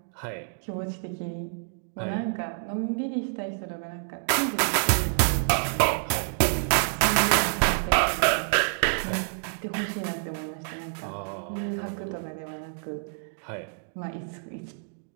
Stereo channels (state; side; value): silent; left; digital silence